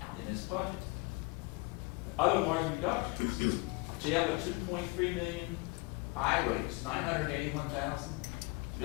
in this budget. Otherwise reductions, jail at 2.3 million, highways 981,000,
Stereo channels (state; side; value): quieter; right; 25.0 dB